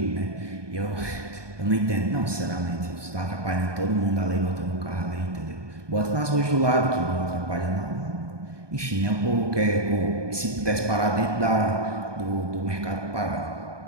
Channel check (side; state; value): left; late; 1.2 ms